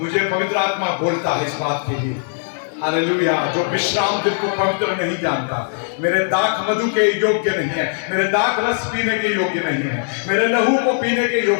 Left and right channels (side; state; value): right; silent; digital silence